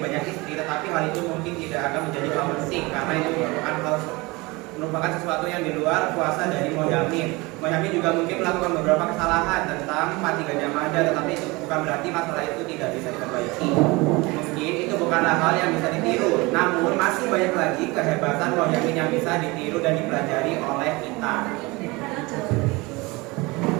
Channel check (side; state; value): left; quieter; 24.0 dB